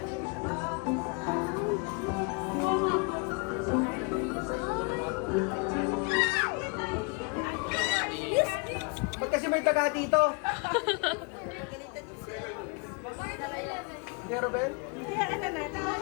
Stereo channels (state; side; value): quieter; right; 32.2 dB